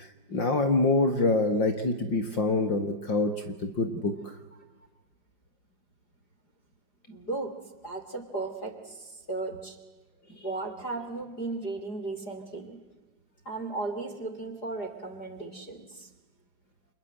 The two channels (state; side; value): late; right; 4.9 ms